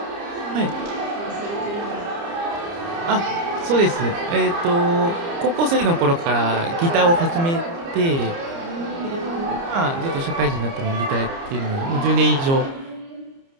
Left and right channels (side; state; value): left; late; 29 ms